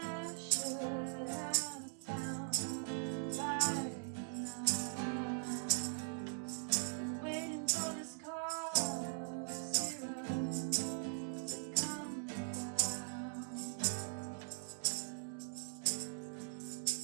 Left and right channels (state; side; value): silent; left; digital silence